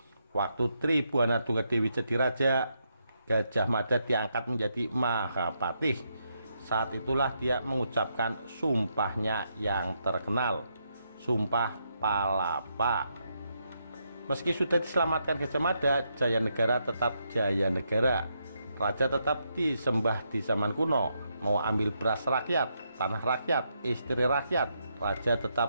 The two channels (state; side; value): inverted; both; correlation -0.80